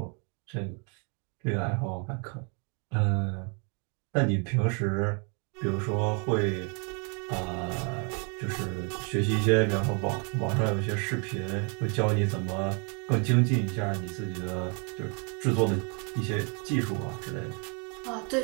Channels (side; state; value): left; quieter; 37.0 dB